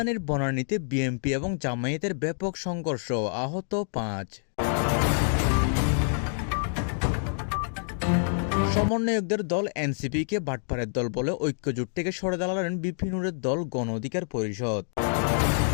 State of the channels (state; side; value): silent; right; digital silence